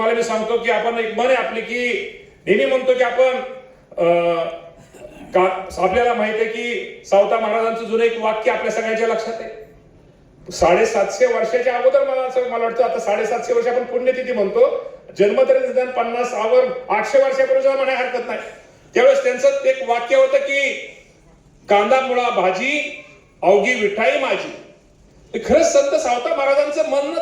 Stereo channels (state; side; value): identical; both; correlation 1.00